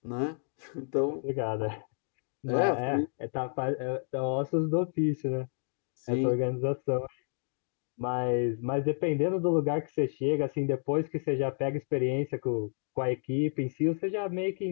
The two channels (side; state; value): right; silent; 57 dB below the other